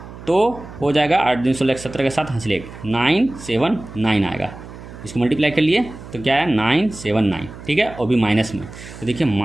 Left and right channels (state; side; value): noise; right; hum, 15 dB below the sound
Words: तो हो जाएगा 8 दूनी 16 17 के साथ हंस ले 979 आएगा। इसको मल्टीप्लाई कर लिए तो क्या है 979, ठीक है, और भी माइनस में। तो देखिए